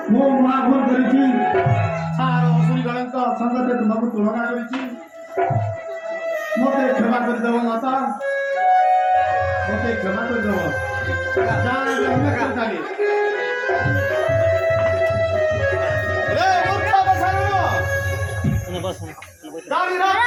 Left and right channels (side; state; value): both; identical; correlation 1.00